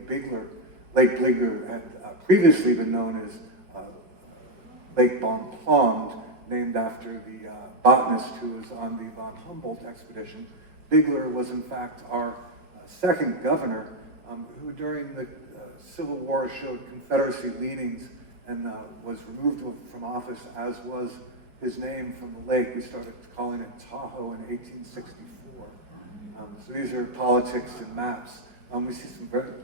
Bigler. Lake Bigler had previously been known as Lake Bonpland, named after the botanist who was on the von Humboldt expedition. Bigler was in fact our second governor, who during the Civil War showed Confederacy leanings and was removed from office, as was his name from the lake. We started calling it Tahoe in 1864. So these are politics and maps. We see some very,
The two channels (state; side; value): late; left; 4.8 ms